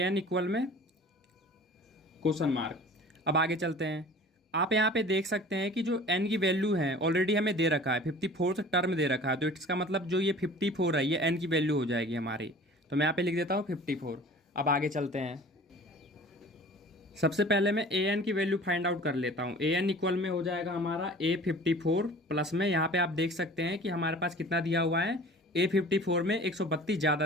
इक्वल में क्वेश्चन मार्क। अब आगे चलते हैं। आप यहाँ पे देख सकते हैं कि जो एन की वैल्यू है ऑलरेडी हमें दे रखा है, 54th टर्म दे रखा है। तो इसका मतलब जो ये 54 है ये एन की वैल्यू हो जाएगी हमारी। तो मैं यहाँ पे लिख देता हूँ 54। अब आगे चलते हैं। सबसे पहले मैं ए एन की वैल्यू फाइंड आउट कर लेता हूँ। ए एन इक्वल में हो जाएगा हमारा ए 54 प्लस में, यहाँ पे आप देख सकते हैं कि हमारे पास कितना दिया हुआ है, ए 54 में 132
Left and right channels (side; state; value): both; normal; correlation 0.44